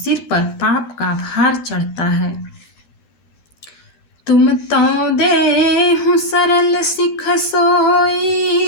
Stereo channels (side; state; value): right; late; 13 ms